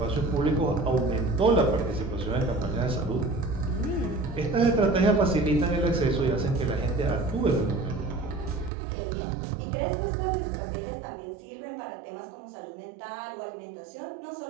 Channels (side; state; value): left; drops out; at 8.7 s